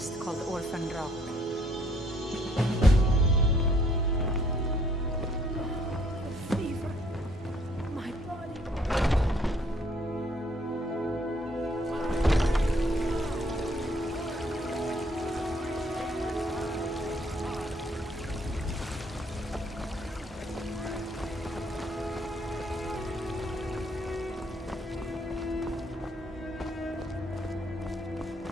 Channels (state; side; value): normal; both; correlation 0.65